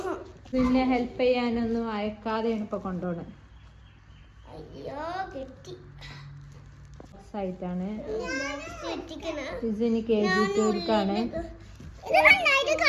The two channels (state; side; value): identical; both; correlation 1.00